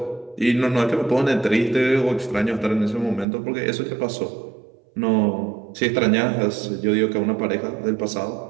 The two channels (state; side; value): drops out; left; at 3.2 s